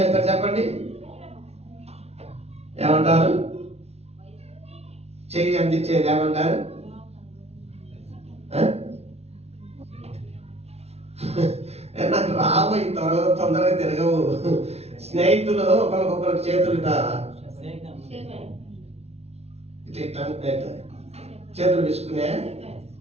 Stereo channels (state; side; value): late; left; 0.31 ms